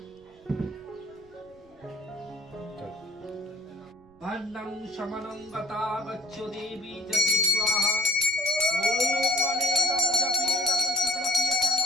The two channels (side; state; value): right; noise; rumble, 29 dB below the sound